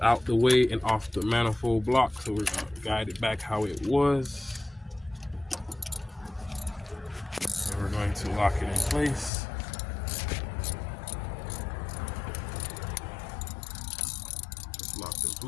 the way and off the manifold block, so we're going to guide it back how it was. So we're going to lock it in place. It's locked in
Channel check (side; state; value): right; drops out; at 9.3 s